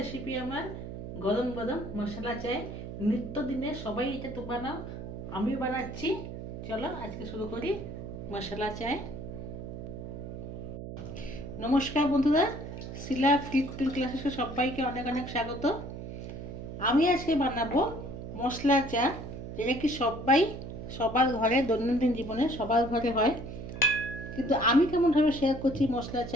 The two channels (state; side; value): noise; right; hum, 9 dB below the sound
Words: আমার গরম গরম মশলা চাই। নিত্যদিনে সবাই এটা তো বানাও, আমিও বানাচ্ছি। চলো আজকে শুরু করি মশলা চাই। নমস্কার বন্ধুরা, শিলা ফ্রি কুকিং ক্লাসে সবাইকে অনেক অনেক স্বাগত। আমি আজকে বানাবো মশলা চা, যেটা কি সবার ঘরে দৈনন্দিন জীবনে সবার ঘরে হয়, কিন্তু আমি কেমনভাবে শেয়ার করছি মশলা